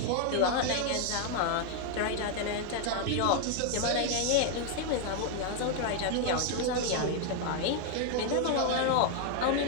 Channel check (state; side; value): different; both; correlation 0.00